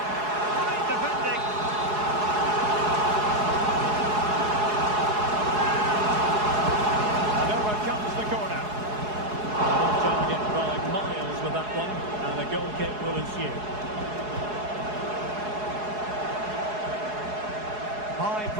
Great defending. And over comes the corner. Off target by Miles with that one. And a goal kick will ensue. High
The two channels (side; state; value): left; late; 4.7 ms